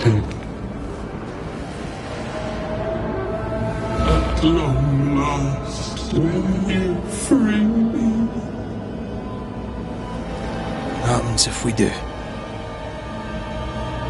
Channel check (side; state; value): both; identical; correlation 1.00